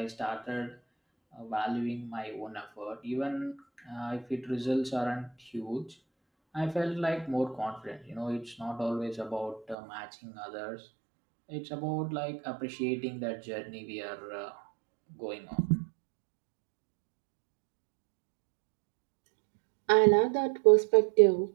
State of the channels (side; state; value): left; drops out; at 9.8 s